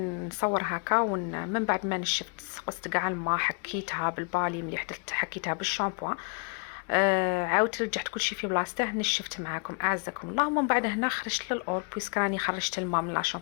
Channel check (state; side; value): quieter; right; 37.1 dB